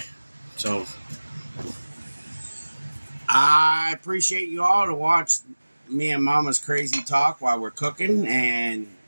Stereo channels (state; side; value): inverted; both; correlation -1.00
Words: So, I appreciate you all to watch me and Mama's crazy talk while we're cooking, and